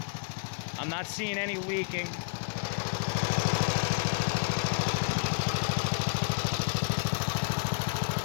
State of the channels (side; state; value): right; silent; digital silence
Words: I'm not seeing any leaking. See